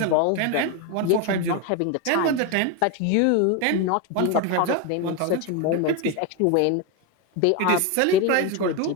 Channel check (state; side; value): different; both; correlation 0.02